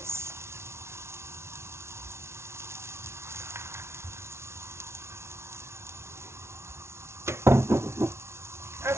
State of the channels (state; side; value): late; left; 0.13 ms